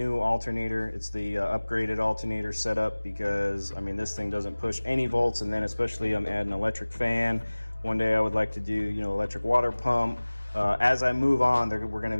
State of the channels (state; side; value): inverted; both; correlation -1.00